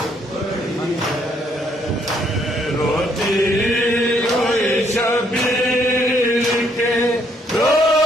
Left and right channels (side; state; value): both; normal; correlation 0.69